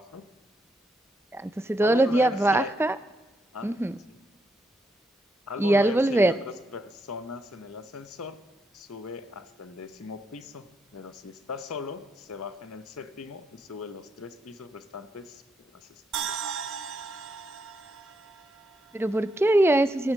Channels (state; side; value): normal; both; correlation 0.80